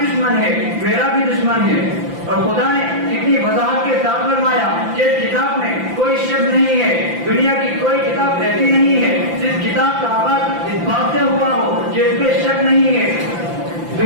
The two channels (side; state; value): left; late; 5.9 ms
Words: دشمن ہے، میرا بھی دشمن ہے. اور خدا نے کتنی وضاحت کے ساتھ فرمایا کہ اس کتاب میں کوئی شک نہیں ہے، دنیا کی کوئی کتاب ایسی نہیں ہے جس کتاب کا آغاز اس بات سے ہوا ہو کہ اس پہ شک نہیں ہے.